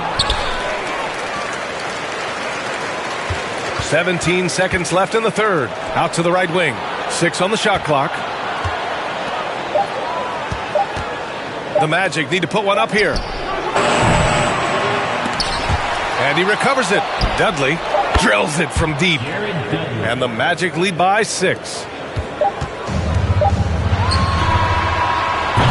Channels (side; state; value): both; identical; correlation 1.00